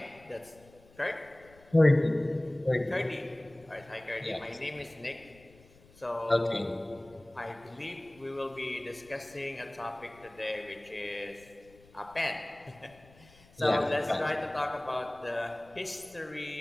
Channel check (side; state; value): left; noise; rumble, 26 dB below the sound